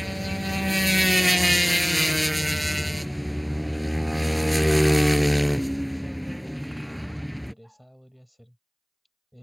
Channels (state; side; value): identical; both; correlation 1.00